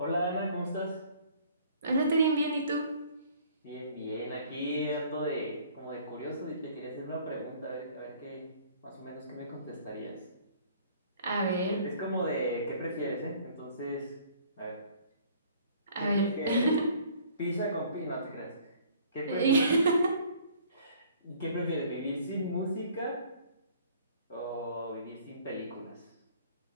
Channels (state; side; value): inverted; both; correlation -0.55